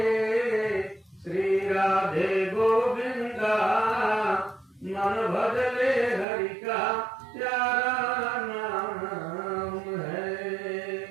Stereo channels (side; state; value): left; drops out; at 6.2 s